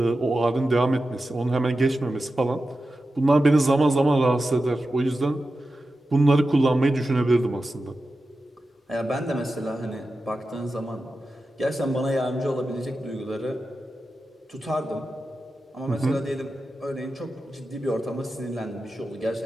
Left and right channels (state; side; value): normal; both; correlation 0.92